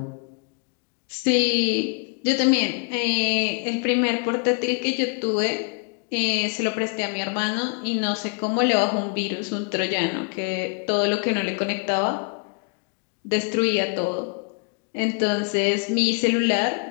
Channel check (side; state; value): right; quieter; 37.3 dB